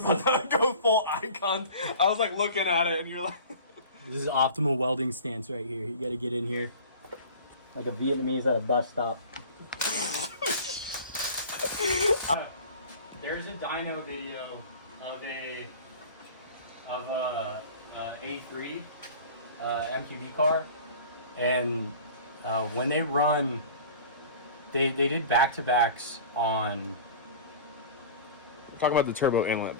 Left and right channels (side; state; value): both; inverted; correlation -0.41